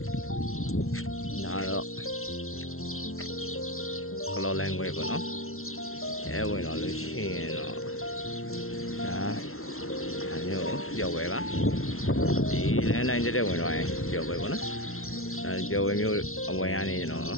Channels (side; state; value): right; late; 0.62 ms